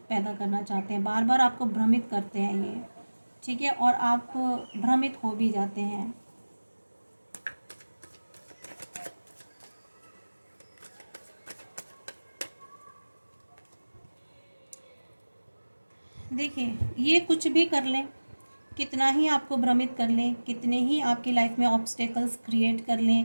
पैदा करना चाहते हैं, बार बार आपको भ्रमित करते हैं ये। ठीक है, और आप भ्रमित हो भी जाते हैं। देखिए, ये कुछ भी कर लें, कितना ही आपको भ्रमित कर लें, कितने ही आपकी लाइफ में ऑब्स्टेकल्स क्रिएट कर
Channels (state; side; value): inverted; both; correlation -1.00